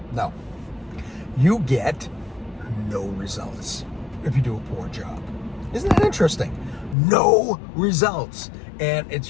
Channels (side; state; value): right; drops out; at 7.0 s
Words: No. You get no results if you do a poor job. Isn't that interesting? No results. And